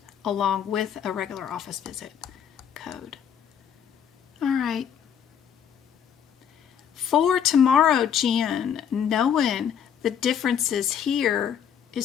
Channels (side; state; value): right; quieter; 8.4 dB